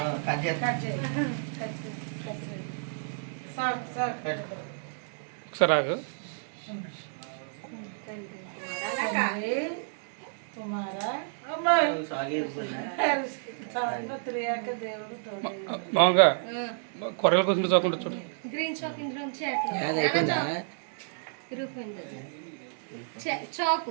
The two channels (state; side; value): silent; left; 58 dB below the other